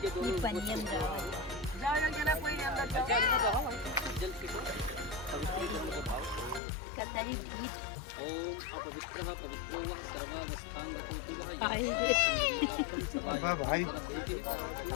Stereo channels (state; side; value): drops out; right; at 6.6 s